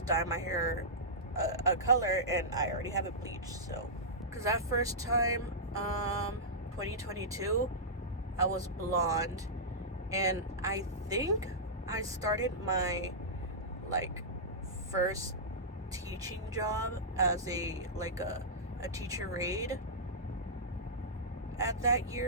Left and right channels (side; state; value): both; normal; correlation -0.14